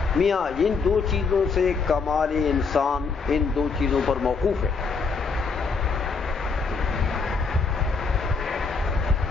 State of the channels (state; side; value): quieter; right; 4.8 dB